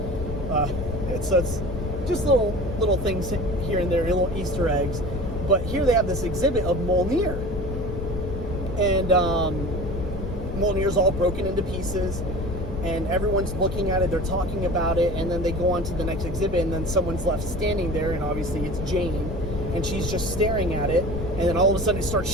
It's just little things here and there, little Easter eggs. But here they have this exhibit of Mjolnir, and Mjolnir's all broken into pieces, and everyone's looking at it. They're talking about it, and then they go on to the next exhibit, and then someone's left standing there, and obviously it's Jane, and she's just staring at it, and then all of a sudden it starts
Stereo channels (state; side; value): noise; left; rumble, 7 dB below the sound